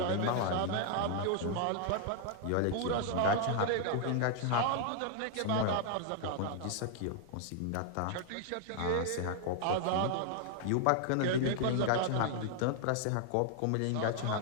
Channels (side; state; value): both; different; correlation 0.00